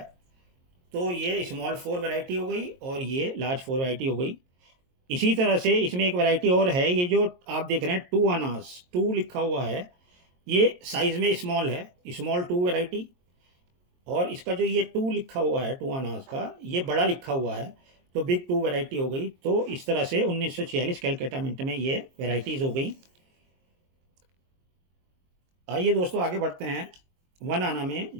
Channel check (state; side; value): late; left; 22 ms